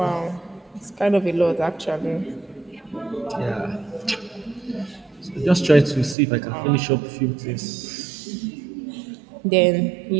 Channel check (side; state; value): left; drops out; at 6.2 s